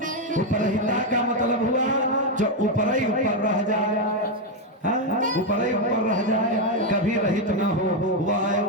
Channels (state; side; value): normal; both; correlation 0.05